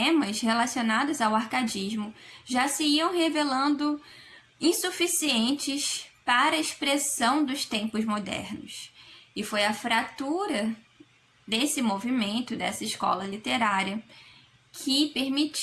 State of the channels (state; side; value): identical; both; correlation 1.00